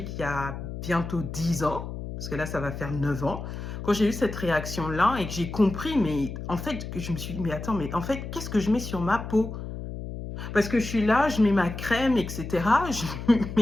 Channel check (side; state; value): left; noise; hum, 8 dB below the sound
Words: il y a bientôt 10 ans, parce que là, ça va faire 9 ans, quand j'ai eu cette réaction-là et que j'ai compris, mais en fait, que je me suis dit, mais attends, mais en fait, qu'est-ce que je mets sur ma peau? Parce que je suis là, je mets ma crème, etc. Je